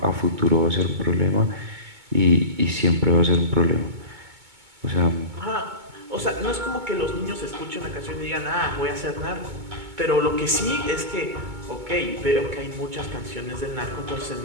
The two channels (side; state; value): left; late; 2.2 ms